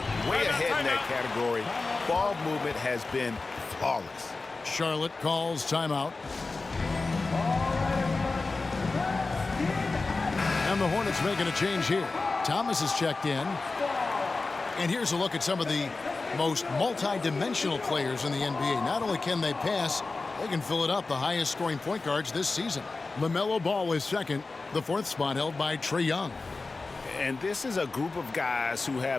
way ahead in that category. Ball movement has been flawless. Charlotte calls timeout. And the Hornets making a change here. Thomas is checked in. And here's a look at some of the most multi-dimensional players in the NBA. Not only can they pass, they can fill it up, the highest scoring point guards this season. LaMelo Ball is second, the 4th spot held by Trae Young. And this is a group of guys who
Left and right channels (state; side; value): quieter; right; 3.7 dB